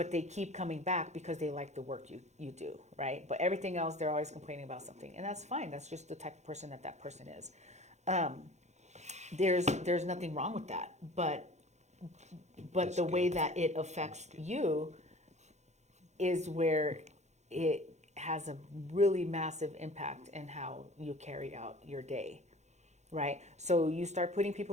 they keep coming back because they like the work you do, right? But everything else, they're always complaining about something. And that's fine. That's just the type of person that person is. There's nothing wrong with that. But the way that it affects you is where it has a really massive impact in how you carry out your day, right? So you start putting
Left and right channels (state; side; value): late; left; 0.33 ms